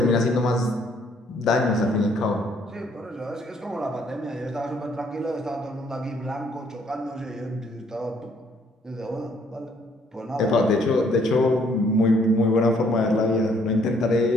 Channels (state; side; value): normal; both; correlation 0.65